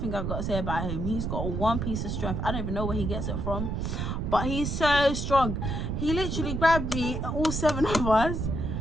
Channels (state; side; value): noise; right; rumble, 2 dB below the sound